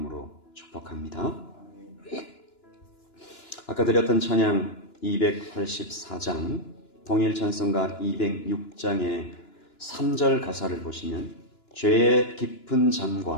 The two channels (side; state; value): right; late; 2.9 ms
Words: 축복합니다. 아까 드렸던 찬양 284장 통일 찬송가 206장의 3절 가사를 보시면 죄의 깊은